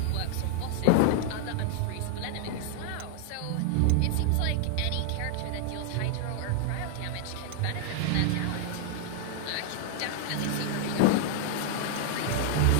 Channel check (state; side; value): different; both; correlation 0.00